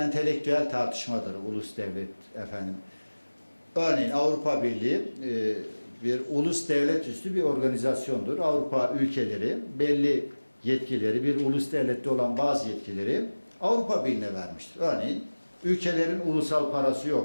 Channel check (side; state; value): both; inverted; correlation -1.00